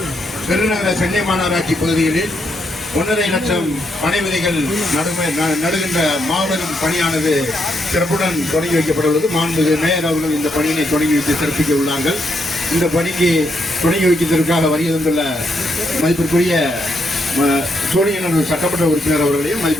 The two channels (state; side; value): normal; both; correlation 0.78